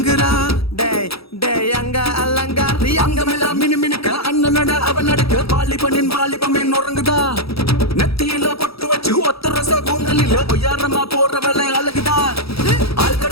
டேய் டேய் அங்க அலங்காரி. அங்கமெல்லாம் மினு மினுக்க அண்ணனட அவன் நடக்க, வாலிபனின் வாலிபமே நொறுங்குதா, நெத்தியில பொட்டு வச்சு ஒத்த ரச கூந்தலில பொய்யாரமா போற வேலை அழகுதா.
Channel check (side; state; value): right; late; 0.77 ms